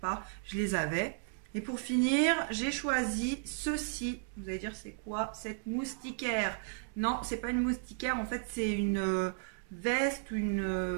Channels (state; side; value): silent; left; digital silence